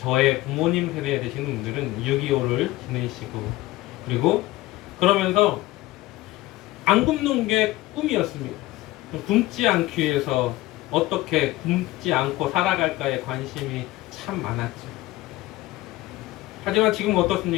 부모님 세대에 되시는 분들은 6.25를 지내시고, 그리고 그러면서 안 굶는 게 꿈이었습니다. 굶지 않기 위해서 어떻게 굶지 않고 살아갈까에 관심이 참 많았죠. 하지만 지금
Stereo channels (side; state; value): right; quieter; 17.8 dB